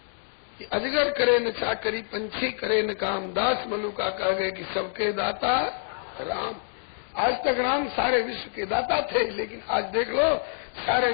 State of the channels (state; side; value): silent; right; digital silence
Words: कि अजगर करे न चाकरी, पंछी करे न काम, दास मलुका कह गए कि सबके दाता राम। आज तक राम सारे विश्व के दाता थे, लेकिन आज देख लो सारे